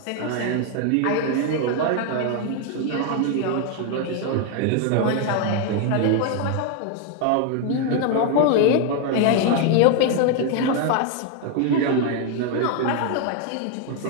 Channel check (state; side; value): different; both; correlation 0.01